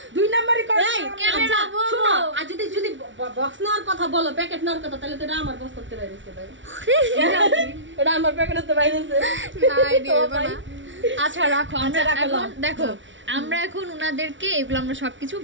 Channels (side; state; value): left; late; 0.55 ms